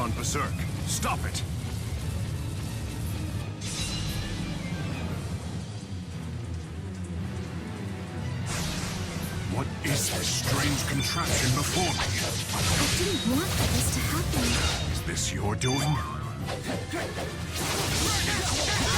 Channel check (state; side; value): identical; both; correlation 1.00